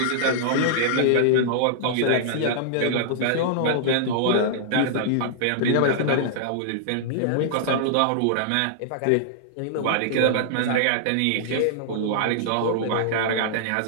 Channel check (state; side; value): different; both; correlation -0.01